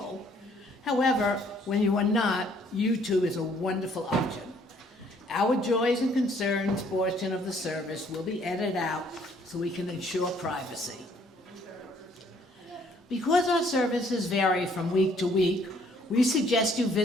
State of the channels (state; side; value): normal; both; correlation 0.63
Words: However, when you are not, YouTube is a wonderful option. Our joys and concerns portion of the service will be edited out so we can ensure privacy. Because our services vary from week to week, we suggest you